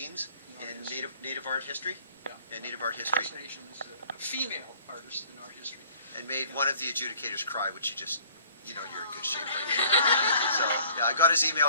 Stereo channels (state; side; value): inverted; both; correlation -0.54